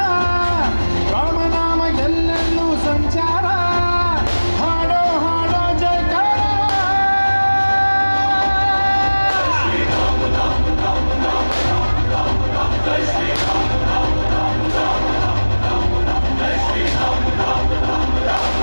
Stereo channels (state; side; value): inverted; both; correlation -1.00